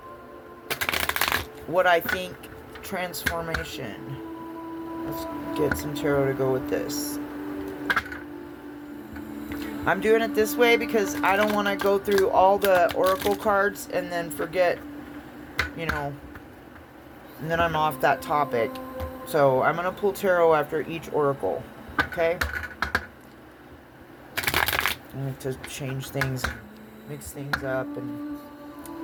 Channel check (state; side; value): identical; both; correlation 1.00